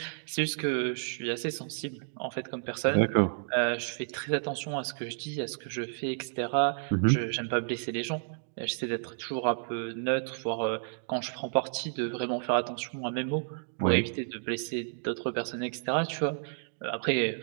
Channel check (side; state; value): left; silent; digital silence